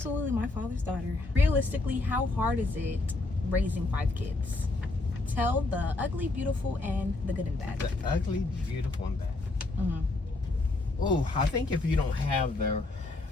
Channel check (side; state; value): right; quieter; 3.1 dB